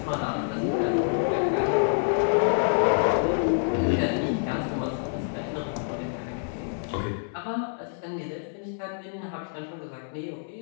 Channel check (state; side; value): silent; right; 60 dB below the other